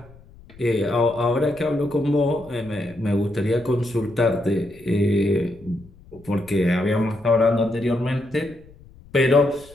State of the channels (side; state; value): left; noise; rumble, 23 dB below the sound